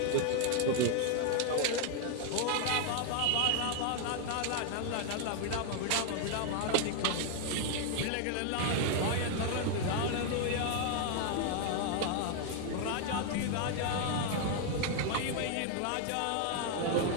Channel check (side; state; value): both; different; correlation 0.00